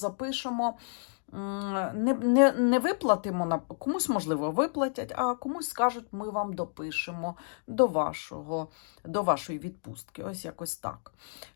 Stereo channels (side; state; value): right; silent; digital silence